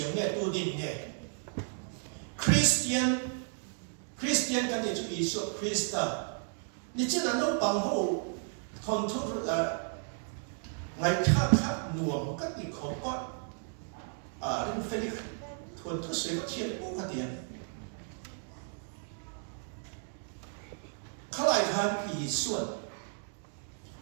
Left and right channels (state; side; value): silent; left; 55 dB below the other